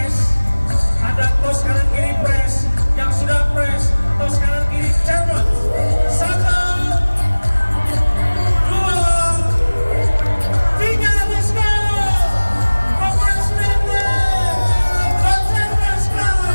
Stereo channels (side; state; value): both; inverted; correlation -1.00